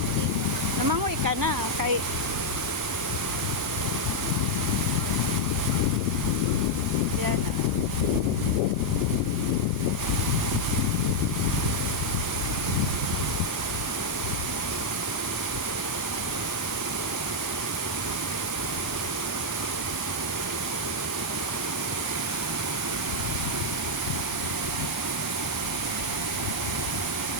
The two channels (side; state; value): both; normal; correlation -0.01